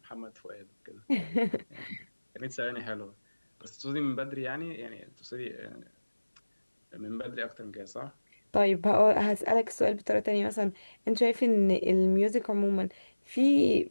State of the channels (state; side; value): inverted; both; correlation -1.00